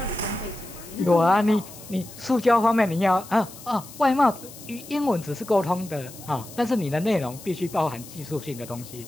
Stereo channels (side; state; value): left; noise; hiss, 17 dB below the sound